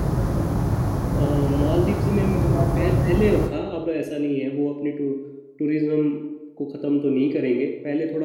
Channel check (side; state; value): both; identical; correlation 1.00